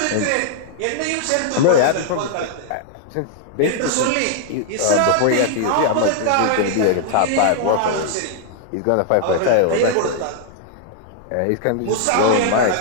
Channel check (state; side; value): different; both; correlation -0.01